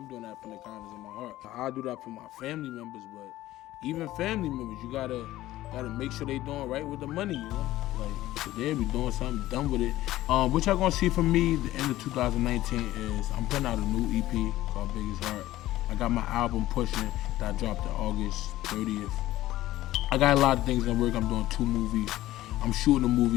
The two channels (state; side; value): quieter; right; 15.5 dB